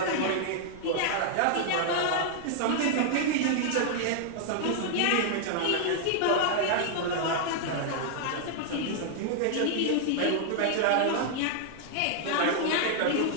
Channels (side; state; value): both; different; correlation -0.01